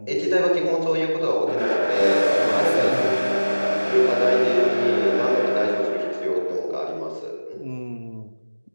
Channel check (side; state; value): both; inverted; correlation -1.00